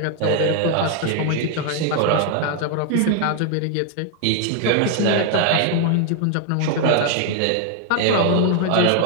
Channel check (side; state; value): both; different; correlation 0.00